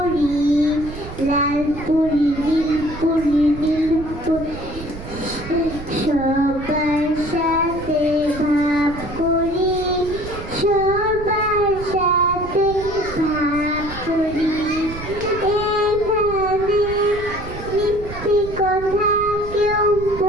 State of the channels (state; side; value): noise; right; rumble, 12 dB below the sound